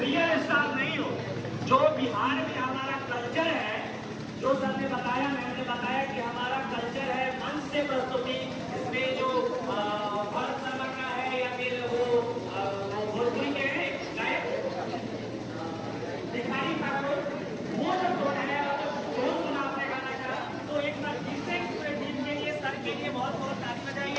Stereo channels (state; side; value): identical; both; correlation 1.00